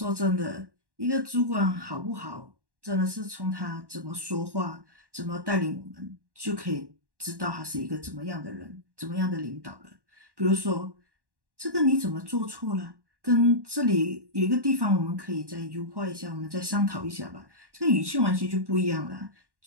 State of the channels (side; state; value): left; late; 1.1 ms